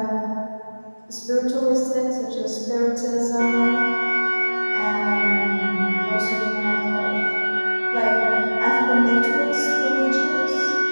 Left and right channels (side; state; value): both; inverted; correlation -1.00